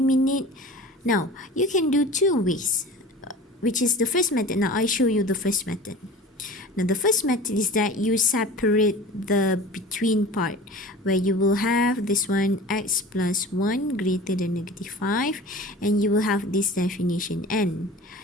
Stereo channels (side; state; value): both; normal; correlation 0.38